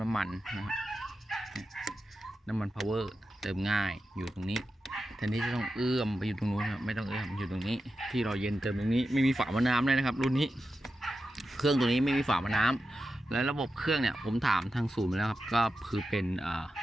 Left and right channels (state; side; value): normal; both; correlation 0.91